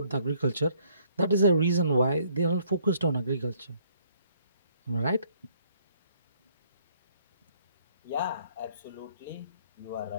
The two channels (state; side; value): inverted; both; correlation -0.65